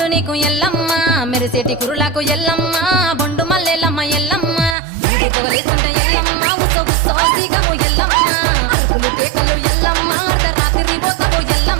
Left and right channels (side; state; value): left; drops out; at 4.8 s